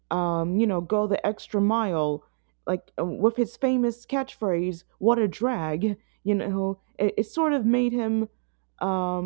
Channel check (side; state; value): left; silent; digital silence